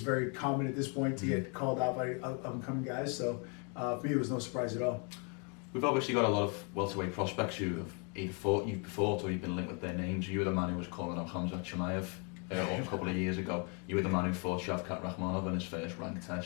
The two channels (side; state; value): right; quieter; 36.2 dB